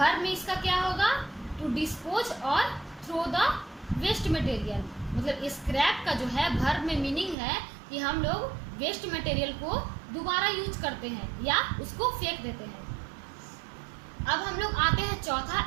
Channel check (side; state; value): left; drops out; at 7.4 s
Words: में इसका क्या होगा? टू डिस्पोज और थ्रो द वेस्ट मटेरियल। मतलब स्क्रैप का जो है वर्ब में मीनिंग है कि हम लोग वेस्ट मटेरियल को दोबारा यूज करते हैं या उसको फेंक देते हैं। अब हम लोग आते हैं चौथा,